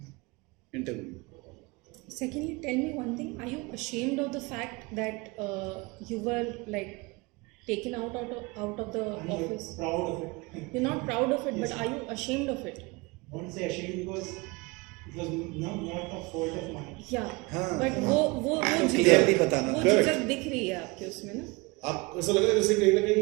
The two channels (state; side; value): quieter; left; 25.3 dB